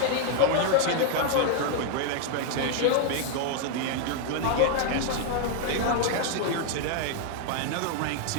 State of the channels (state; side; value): different; both; correlation 0.00